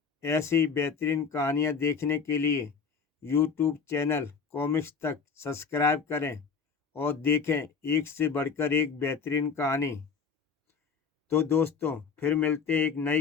ऐसी ही बेहतरीन कहानियाँ देखने के लिए यूट्यूब चैनल कॉमिक्स तक सब्सक्राइब करें और देखें एक से बढ़कर एक बेहतरीन कहानी। तो दोस्तों, फिर मिलते हैं एक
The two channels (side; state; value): right; quieter; 5.8 dB